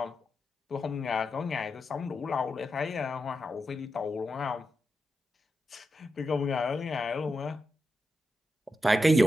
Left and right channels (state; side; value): normal; both; correlation 0.88